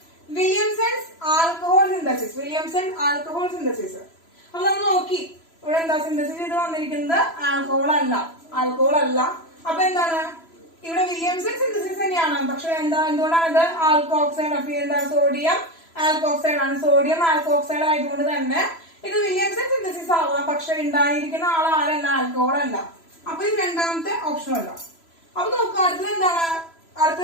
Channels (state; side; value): late; right; 3.0 ms